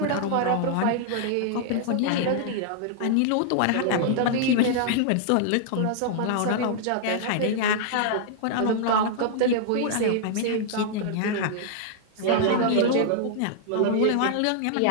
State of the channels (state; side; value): different; both; correlation -0.01